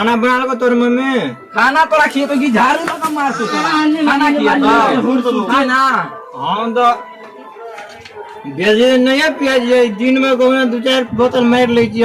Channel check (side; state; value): both; identical; correlation 1.00